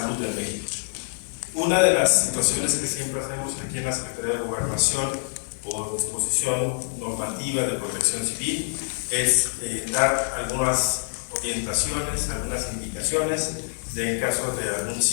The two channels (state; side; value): silent; right; 61 dB below the other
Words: en México. Una de las situaciones que siempre hacemos aquí en la Secretaría de Gobernación, por disposición normativa de protección civil, es dar algunas orientaciones, algunas indicaciones en caso de algún